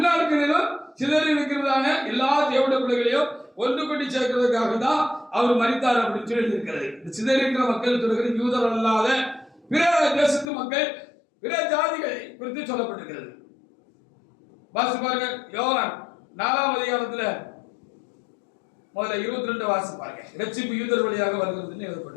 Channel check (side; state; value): right; drops out; at 10.5 s